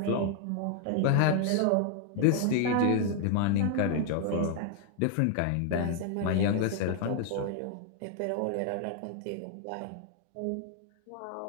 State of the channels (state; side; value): different; both; correlation 0.00